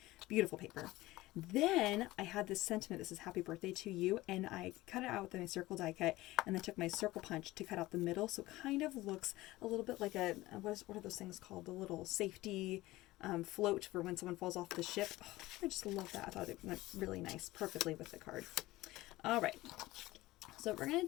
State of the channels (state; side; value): quieter; right; 18.4 dB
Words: Beautiful paper. Then I had this sentiment, this is happy birthday to you, and I cut it out with my circle die cut and then took my circle punch to cut out the middle. So it kind of looks a little bit like a, what are those things called? The little safety float for when someone falls off the ship. Oh, I just love that. I thought it went really nice, perfectly with the card. All right, so what we're going